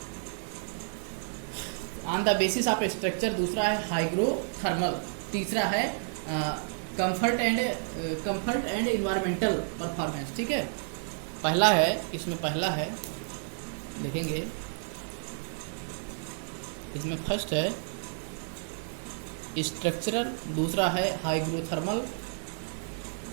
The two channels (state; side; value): silent; left; digital silence